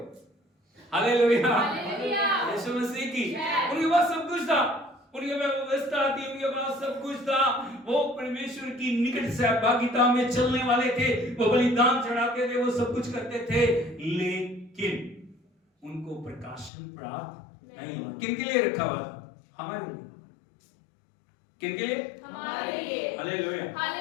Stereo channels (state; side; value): drops out; right; at 16.7 s